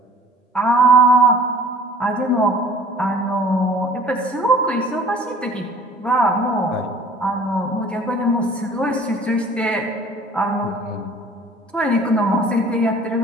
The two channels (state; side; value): normal; both; correlation 0.50